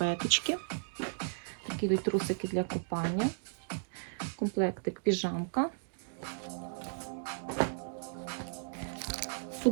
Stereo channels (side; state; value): left; silent; digital silence